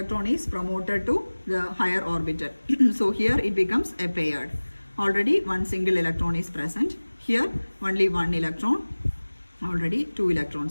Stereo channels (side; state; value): both; inverted; correlation -1.00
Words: is promoted to the higher orbital. So here it becomes a paired. Already one single electron is present. Here only one electron. Already two